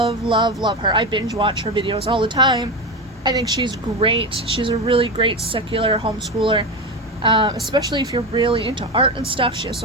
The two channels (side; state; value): both; normal; correlation 0.19